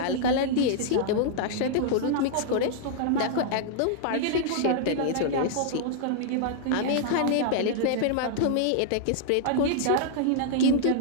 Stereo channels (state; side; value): different; both; correlation -0.01